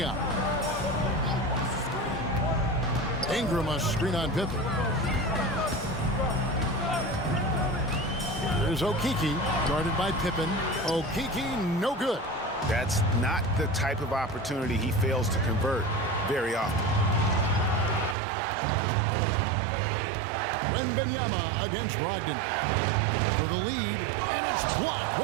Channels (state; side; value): drops out; left; at 18.2 s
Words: Ingram a screen on Pippen. There's Okeke, guarded by Pippen. Okeke, no good. That's not the type of opportunity he fails to convert very often. Wembanyama against Brogdon for the lead, and it's blocked.